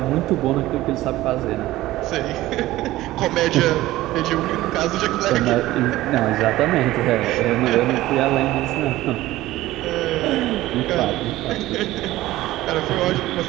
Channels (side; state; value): left; quieter; 16.5 dB